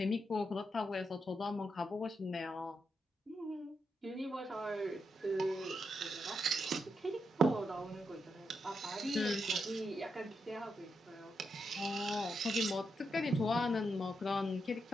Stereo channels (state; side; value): normal; both; correlation 0.83